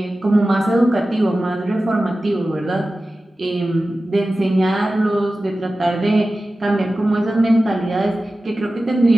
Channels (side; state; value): both; normal; correlation 0.95